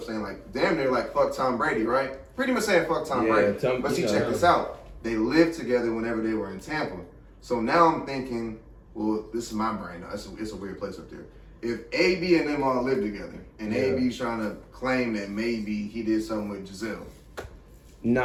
saying like, damn, they're like, fuck Tom Brady, right? Pretty much saying fuck Tom Yeah, Brady. But see, check this out. They lived together whenever they were in Tampa. So now I'm thinking, well, this is my brain. It's a weird place up there. If AB and them all live together and AB's trying to claim that maybe he did something with Giselle.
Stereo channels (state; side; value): identical; both; correlation 1.00